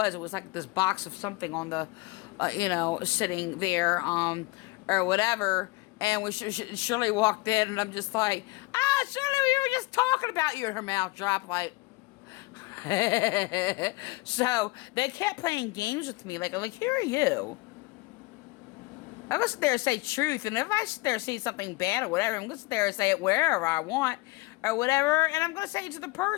It was like this box of something on the, sitting there, or whatever. And when Shirley walked in, and I'm just like, Shirley, we were just talking about you. And her mouth dropped like. So they kept playing games with me. Like, who are you? I'm gonna sit there and say truth, and if I sit there and say something bad or whatever, I'm gonna sit there and say it wherever I want or whatever, and I'm gonna say it to the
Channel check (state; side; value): quieter; right; 22.5 dB